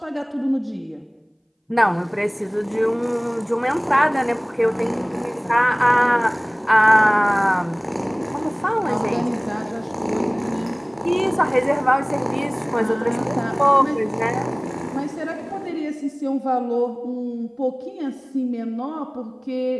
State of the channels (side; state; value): both; identical; correlation 1.00